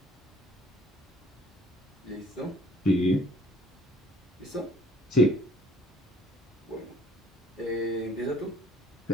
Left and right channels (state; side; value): normal; both; correlation 0.56